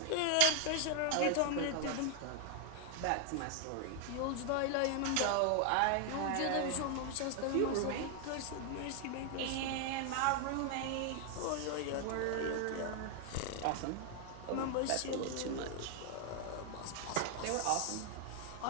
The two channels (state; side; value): different; both; correlation 0.00